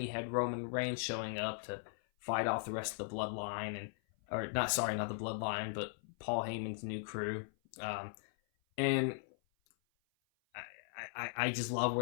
you had Roman Reigns showing up to fight off the rest of the Bloodline, not the Bloodline, but Paul Heyman's new crew. And I just love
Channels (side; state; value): right; silent; 52 dB below the other